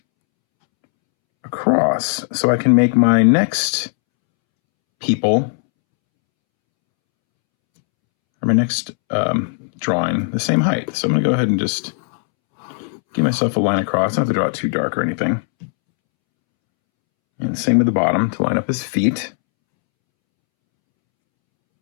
across so I can make my next people, or my next drawing, the same height. So I'm gonna go ahead and just give myself a line across. I don't have to draw it too dark or anything. And same with the bottom to line up his feet.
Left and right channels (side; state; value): right; silent; 67 dB below the other